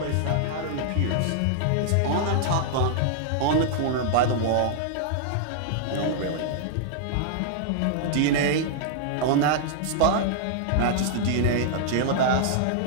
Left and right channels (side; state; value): both; different; correlation -0.01